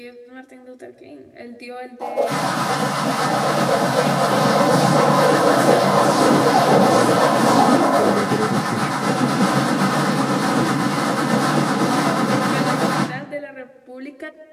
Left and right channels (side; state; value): both; identical; correlation 1.00